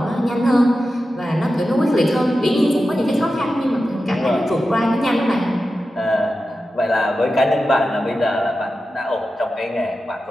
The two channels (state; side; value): normal; both; correlation 0.92